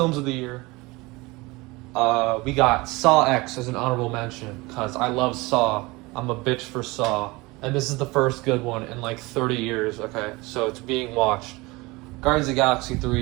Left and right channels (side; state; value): left; quieter; 23.1 dB